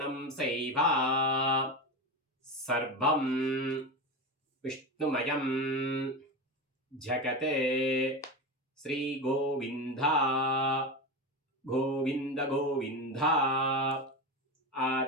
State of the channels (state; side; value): normal; both; correlation 0.20